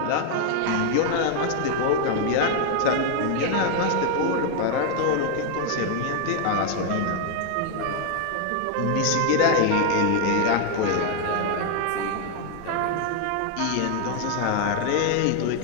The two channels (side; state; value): both; different; correlation 0.00